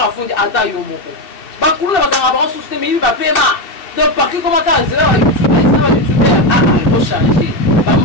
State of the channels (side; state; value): right; late; 2.6 ms